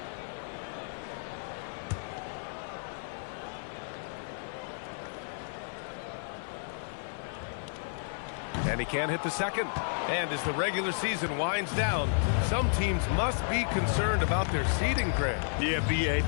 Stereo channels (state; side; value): silent; right; 56 dB below the other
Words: And he can't hit the second. And as the regular season winds down, some teams must be concerned about their seeding, Greg. Yeah, BA.